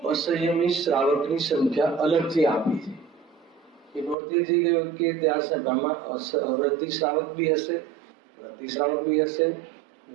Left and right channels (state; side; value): drops out; left; at 4.2 s